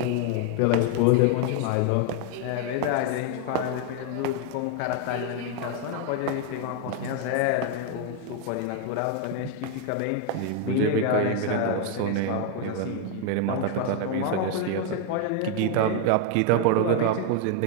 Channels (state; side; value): different; both; correlation 0.01